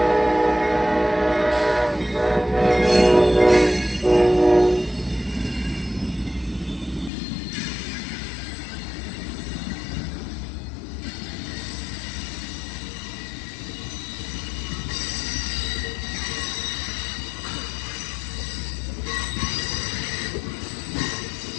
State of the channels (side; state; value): right; drops out; at 7.1 s